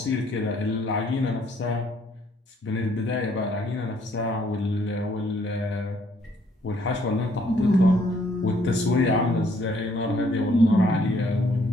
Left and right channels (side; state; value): both; normal; correlation 0.66